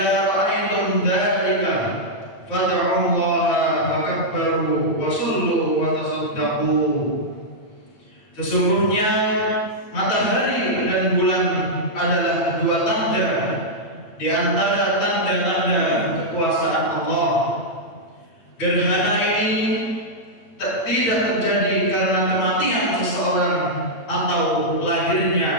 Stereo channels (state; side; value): late; right; 8.9 ms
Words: ra'aytum dzalika fad'u Allah fakabbaru wa sallu wa tasaddaqu." Sesungguhnya matahari dan bulan adalah dua tanda di antara tanda-tanda kekuasaan Allah. Gerhana ini tidak terjadi karena kematian seseorang atau lahirnya